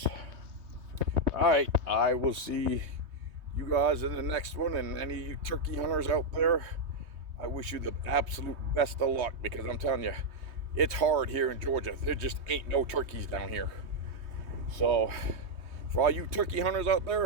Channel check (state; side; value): late; left; 3.2 ms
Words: All right, I will see you guys in the next one. And any of you turkey hunters out there, I wish you the absolute best of luck, because I'm telling you, it's hard here in Georgia. There just ain't no turkeys down here. So, for all you turkey hunters out